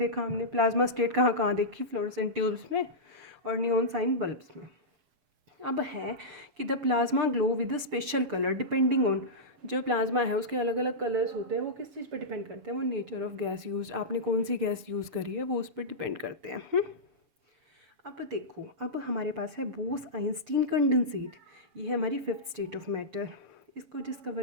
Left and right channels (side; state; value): left; late; 7.1 ms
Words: हमने प्लाज्मा स्टेट कहाँ कहाँ देखी, फ्लोरेसेंट ट्यूब्स में और नियॉन साइन बल्ब्स में। अब है कि the plasma glow with a special colour depending on, जो प्लाज्मा है उसके अलग अलग कलर्स होते हैं। वो किस चीज़ पर डिपेंड करते हैं, वो नेचर ऑफ गैस यूज, आपने कौन सी गैस यूज़ करी है वो उस पर डिपेंड करते हैं। अब देखो, अब हमारे पास है बोस आइंस्टीन कंडेंसेट। ये है हमारी फिफ्थ स्टेट ऑफ मैटर। इसको